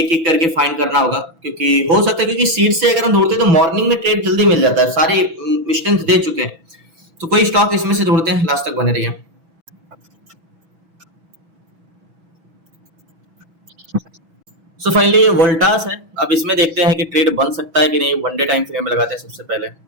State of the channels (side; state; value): left; late; 6.1 ms